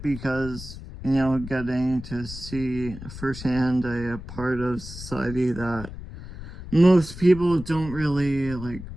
because, getting to see firsthand a part of society that most people don't really like.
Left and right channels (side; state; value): left; noise; rumble, 12 dB below the sound